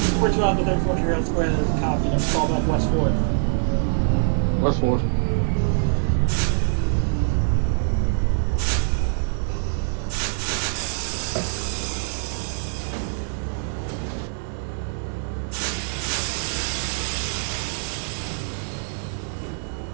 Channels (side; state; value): left; silent; digital silence